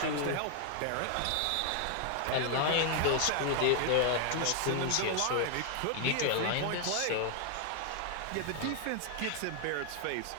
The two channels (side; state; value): both; different; correlation 0.00